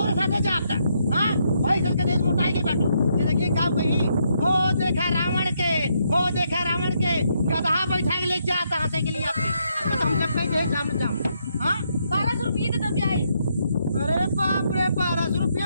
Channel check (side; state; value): both; inverted; correlation -0.76